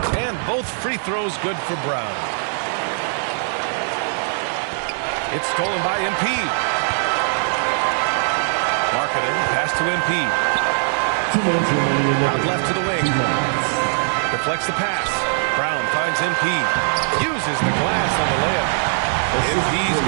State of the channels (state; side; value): silent; left; digital silence